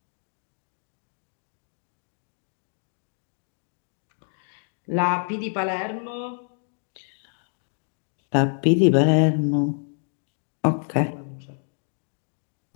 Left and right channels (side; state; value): right; silent; 60 dB below the other